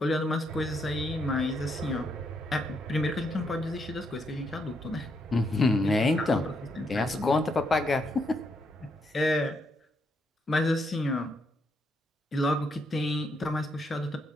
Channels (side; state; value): both; normal; correlation 0.77